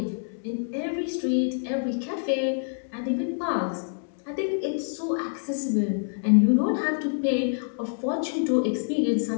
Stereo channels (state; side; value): silent; right; 60 dB below the other